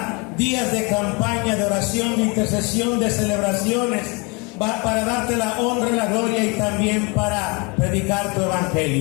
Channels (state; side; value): quieter; right; 29.7 dB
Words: días de campaña, de oración, de intercesión, de celebraciones, para darte la honra, la gloria y también para predicar tu